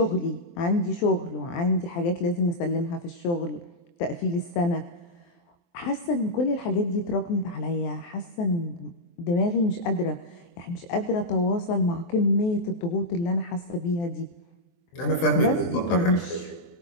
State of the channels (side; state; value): right; late; 23 ms